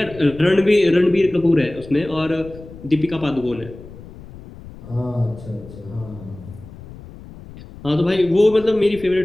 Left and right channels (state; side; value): noise; left; rumble, 17 dB below the sound